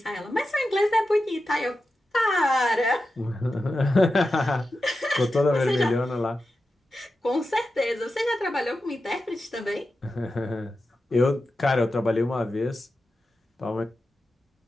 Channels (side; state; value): both; normal; correlation 0.91